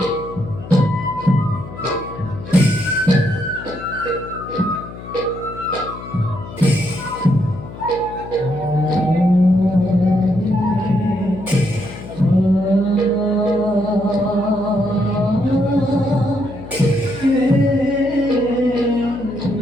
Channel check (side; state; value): left; noise; hum, 13 dB below the sound